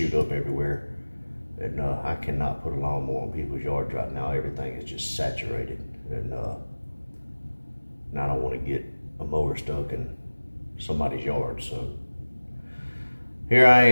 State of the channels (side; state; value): both; inverted; correlation -1.00